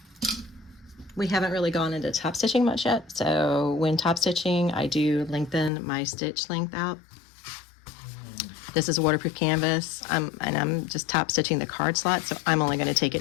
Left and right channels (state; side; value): drops out; right; at 5.7 s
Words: We haven't really gone into top stitching much yet, so when top stitching, I do lengthen my stitch length out. This is a waterproof canvas, and I'm just top stitching the card slot, so I'm only going to take